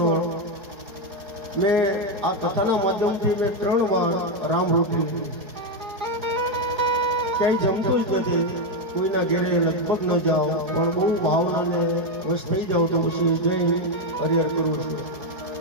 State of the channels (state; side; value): late; left; 4.8 ms